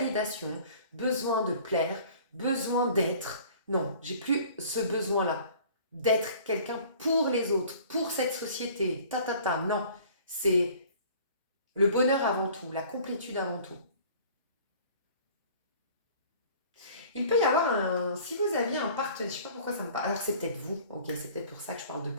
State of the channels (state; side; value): inverted; both; correlation -0.49